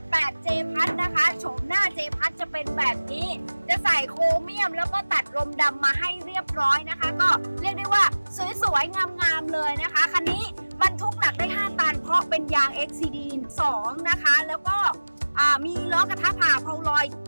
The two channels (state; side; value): inverted; both; correlation -1.00